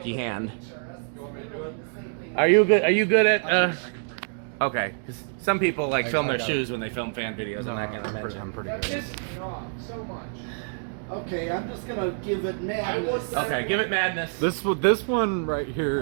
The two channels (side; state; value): left; silent; digital silence